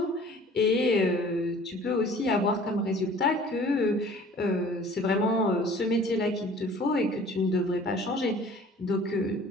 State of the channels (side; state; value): both; normal; correlation 0.49